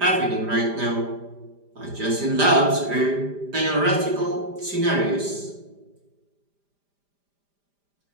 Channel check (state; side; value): late; left; 5.0 ms